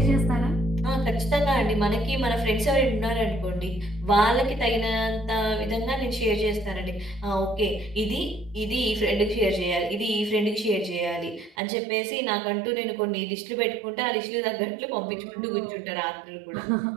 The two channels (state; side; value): drops out; left; at 11.6 s